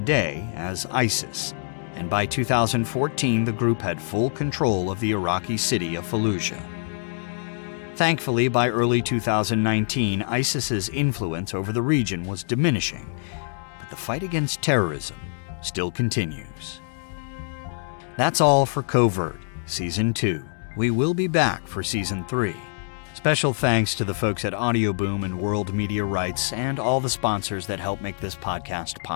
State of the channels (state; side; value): silent; right; digital silence